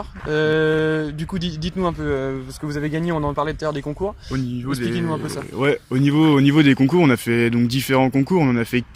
Du coup, dites-nous un peu ce que vous avez gagné. On en parlait tout à l'heure des concours. Expliquez-nous un peu ça. Ouais, au niveau des concours, on a fait donc différents concours. On en a fait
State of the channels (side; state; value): both; identical; correlation 1.00